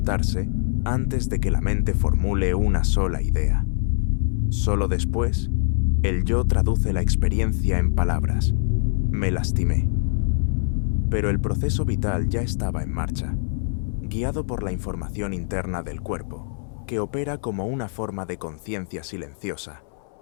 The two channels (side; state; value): right; silent; 61 dB below the other